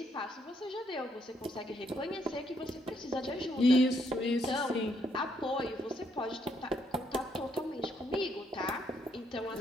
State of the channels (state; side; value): normal; both; correlation 0.73